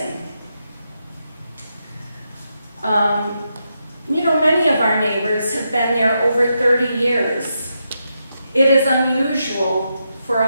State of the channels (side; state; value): both; inverted; correlation -0.84